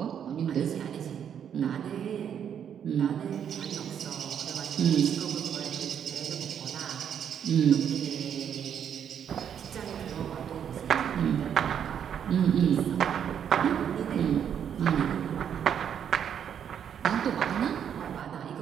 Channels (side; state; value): left; quieter; 8.6 dB